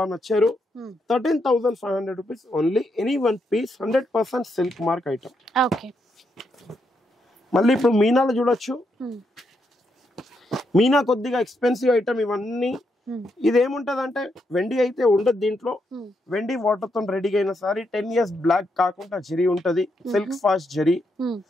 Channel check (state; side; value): normal; both; correlation 0.80